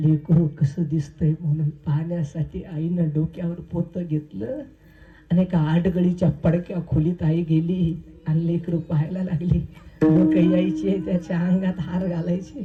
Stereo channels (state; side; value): identical; both; correlation 1.00